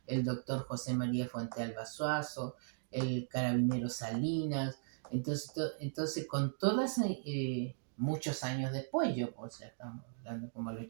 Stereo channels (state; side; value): silent; left; digital silence